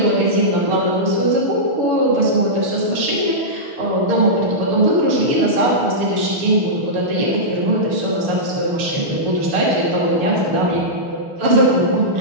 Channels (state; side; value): late; left; 6.8 ms